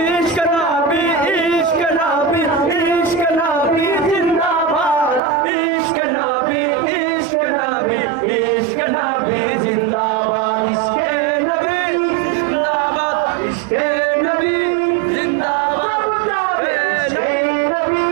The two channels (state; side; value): drops out; left; at 5.2 s